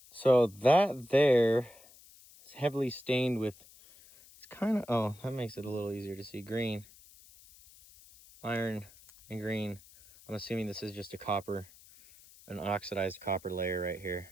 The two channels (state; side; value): noise; left; hiss, 23 dB below the sound